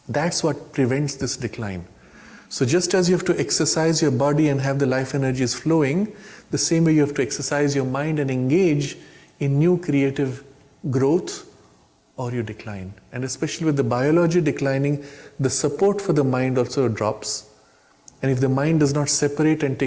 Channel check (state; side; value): identical; both; correlation 1.00